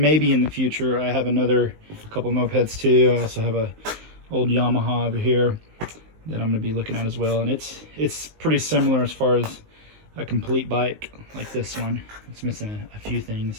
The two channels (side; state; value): left; late; 19 ms